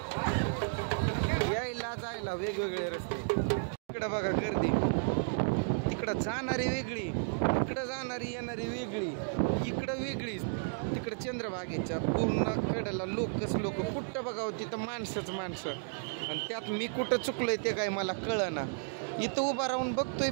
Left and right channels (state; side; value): silent; left; digital silence